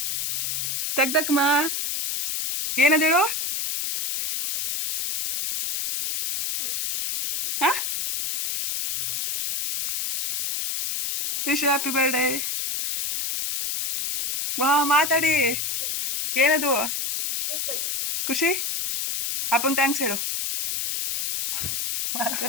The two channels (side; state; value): left; noise; hiss, 2 dB below the sound